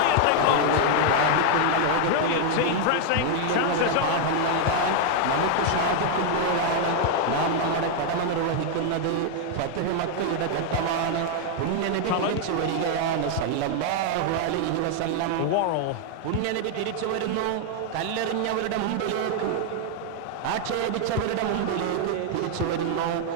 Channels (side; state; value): both; different; correlation 0.00